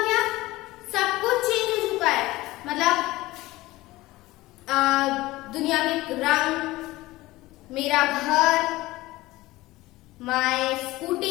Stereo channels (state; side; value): quieter; right; 18.7 dB